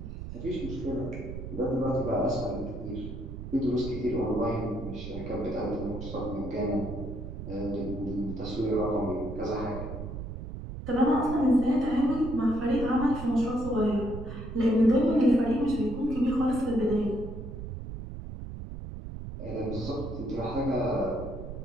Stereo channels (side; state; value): right; noise; rumble, 8 dB below the sound